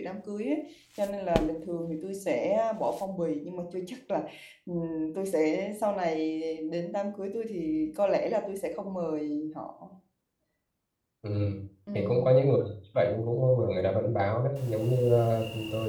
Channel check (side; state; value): both; identical; correlation 1.00